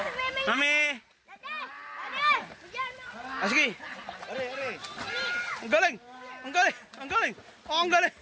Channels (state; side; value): identical; both; correlation 1.00